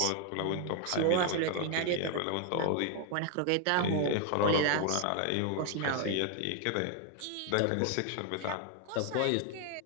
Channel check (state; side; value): different; both; correlation 0.00